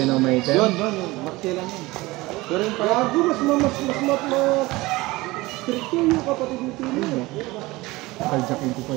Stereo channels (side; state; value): left; quieter; 20.8 dB